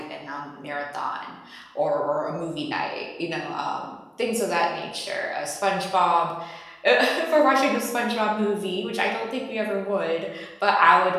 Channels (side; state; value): both; identical; correlation 1.00